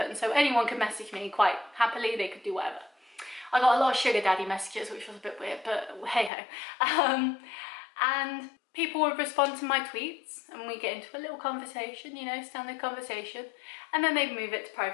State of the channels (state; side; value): drops out; right; at 6.3 s